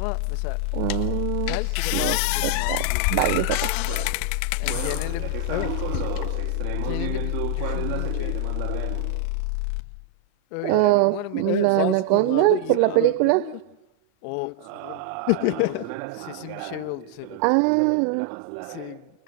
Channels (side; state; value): both; different; correlation 0.00